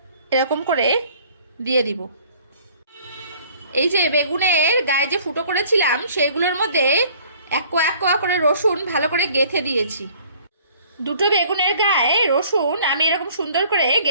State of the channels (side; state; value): both; inverted; correlation -0.54